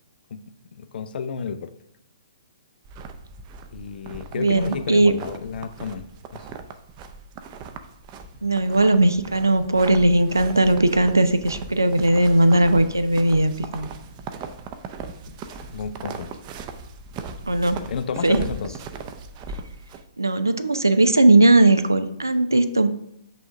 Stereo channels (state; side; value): inverted; both; correlation -0.88